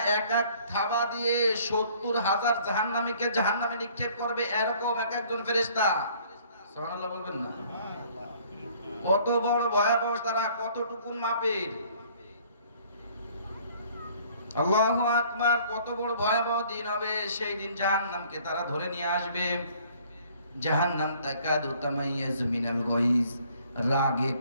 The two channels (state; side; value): inverted; both; correlation -0.57